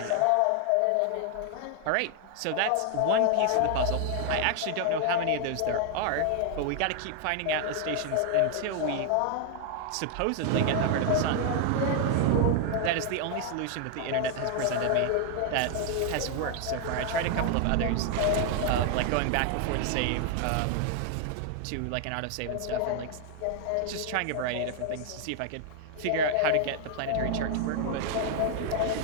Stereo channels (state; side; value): different; both; correlation 0.00